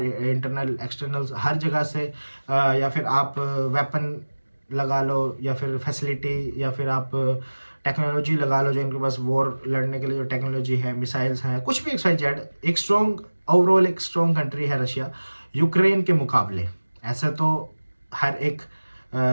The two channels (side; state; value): both; inverted; correlation -1.00